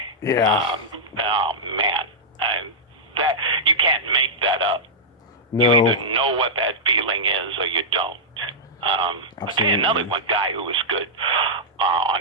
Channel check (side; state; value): both; normal; correlation -0.10